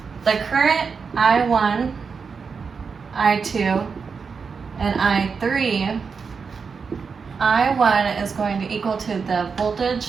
the current I1, I2, and I3, I1 is going to equal to the voltage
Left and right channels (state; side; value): quieter; left; 5.5 dB